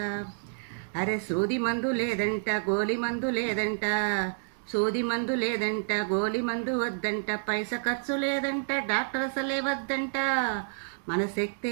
అరే సూది మందు లేదంట, గోలి మందు లేదంట, సూది మందు లేదంట, గోలి మందు వద్దంట, పైస ఖర్చు లేదంట, డాక్టర్ అసలే వద్దంట. మన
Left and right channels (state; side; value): silent; left; digital silence